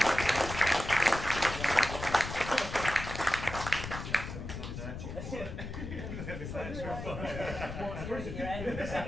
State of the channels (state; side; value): noise; left; rumble, 7 dB below the sound